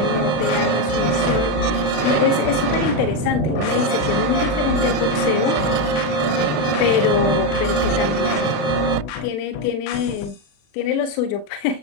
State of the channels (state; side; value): late; right; 40 ms